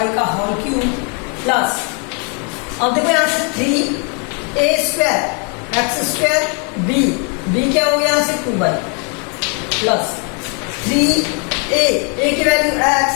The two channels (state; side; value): quieter; right; 37.5 dB